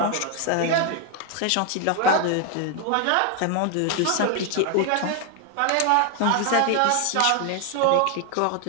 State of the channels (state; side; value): different; both; correlation 0.00